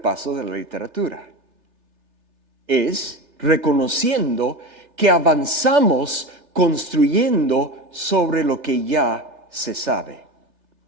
de la literatura. Es reconociendo que avanzamos construyendo sobre lo que ya se sabe.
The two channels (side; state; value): left; late; 3.3 ms